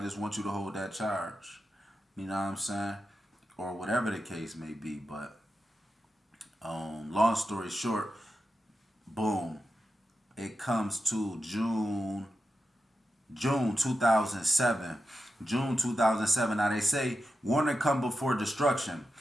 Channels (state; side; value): normal; both; correlation 0.90